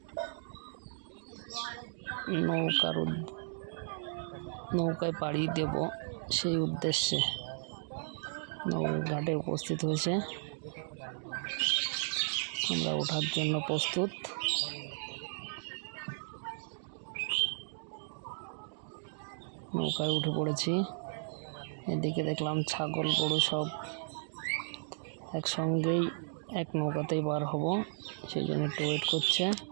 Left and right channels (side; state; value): left; silent; digital silence